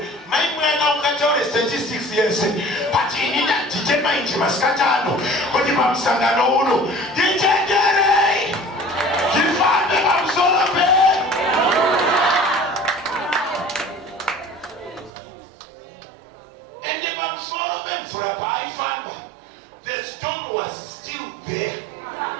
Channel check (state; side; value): drops out; left; at 15.1 s